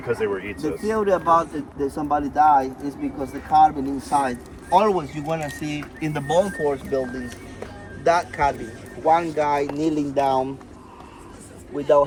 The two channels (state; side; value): identical; both; correlation 1.00